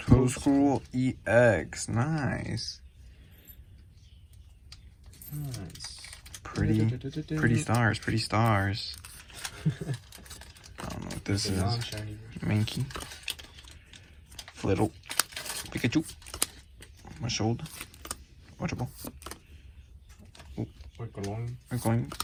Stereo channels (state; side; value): identical; both; correlation 1.00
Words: Toadstool EX, nice. Pretty stars. I don't know what this is. Mankey, Flittle, Pikachu, Mashold, Watchable, Oikoing,